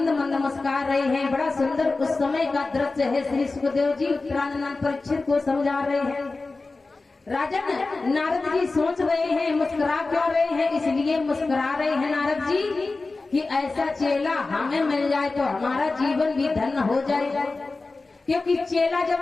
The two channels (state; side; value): quieter; right; 3.6 dB